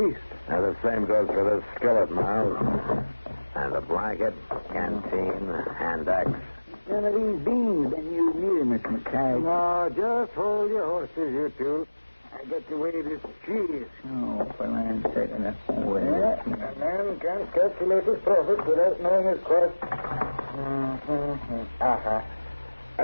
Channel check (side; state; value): both; inverted; correlation -1.00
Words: And the same goes for this skillet, Miles. And the blanket, canteen, hand axe. None of these beans been used neither, Miss McKay. No, just hold your horses, you two. I got to weigh this cheese. Oh, for land's sake, enough. Yeah, a man can't calculate his profit without knowing his cost.